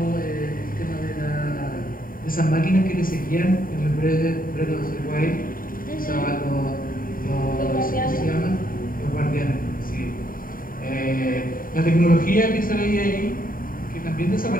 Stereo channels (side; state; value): right; late; 0.41 ms